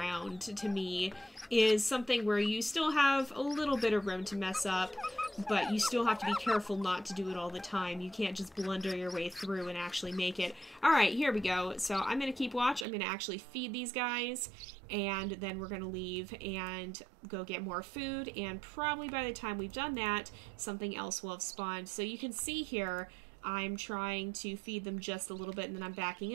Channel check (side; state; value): left; drops out; at 12.9 s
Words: to me, is something where you still have a little bit of room to mess up, but you still have to be careful not to do it all the time. You can't just blunder your way through and actually make it. Alright, here we go. So I'm going to keep watch. I'm going to actually feed these guys, and then we're going to leave and go get more food, and probably by the time we've done that, something else will have spawned. So you can see here, I'm trying to feed them just a little bit, and then I'm